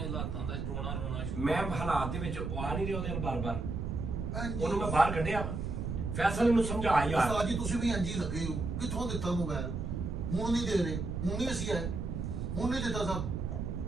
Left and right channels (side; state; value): right; noise; rumble, 3 dB below the sound